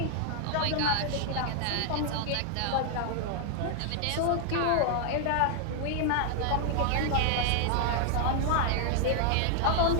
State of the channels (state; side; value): different; both; correlation 0.00